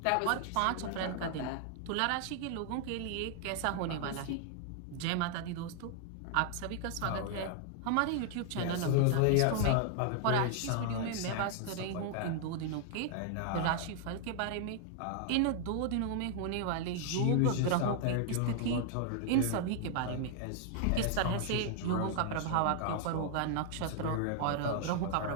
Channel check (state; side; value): different; both; correlation 0.00